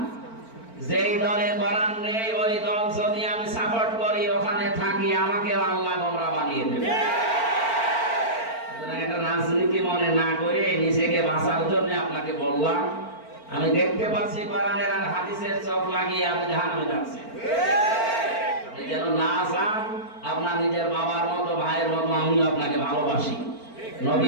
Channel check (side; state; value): right; late; 4.4 ms